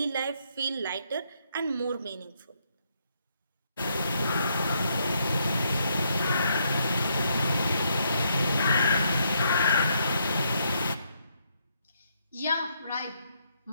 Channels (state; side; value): inverted; both; correlation -0.75